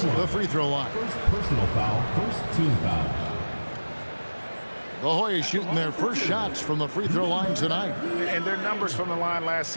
the free throw line. First personal foul, first team foul. The Hoyas shooting their first shots from the free throw line tonight. And their numbers from the line last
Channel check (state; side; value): inverted; both; correlation -1.00